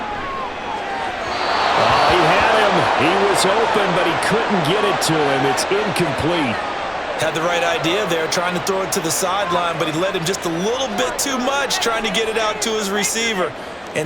Oh, he had him. He was open, but he couldn't get it to him. It's incomplete. Had the right idea there, trying to throw it to the sideline, but he led him just a little bit too much, trying to get it out to his receiver.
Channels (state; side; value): identical; both; correlation 1.00